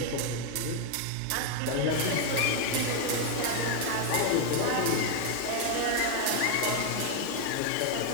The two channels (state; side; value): different; both; correlation 0.00